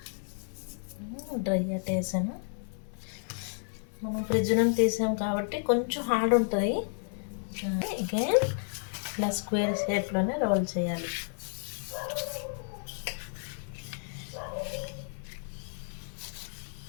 డ్రై ఆట వేసాను. మనం ఫ్రిడ్జ్ నుండి తీసాం కాబట్టి కొంచెం హార్డ్ ఉంటుంది. అగైన్ ఇలా స్క్వేర్ షేప్లోనే రోల్ చేయాలి.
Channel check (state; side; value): silent; right; digital silence